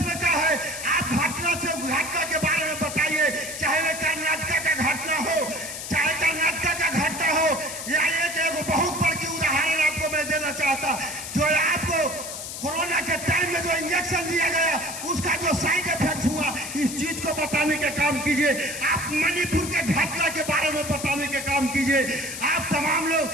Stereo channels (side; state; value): left; noise; hiss, 8 dB below the sound